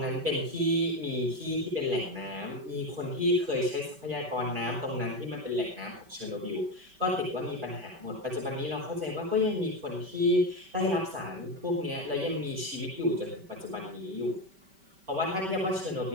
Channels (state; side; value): late; left; 5.1 ms